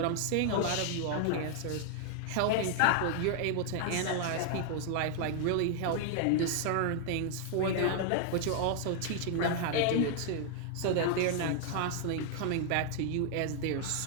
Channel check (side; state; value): both; different; correlation 0.00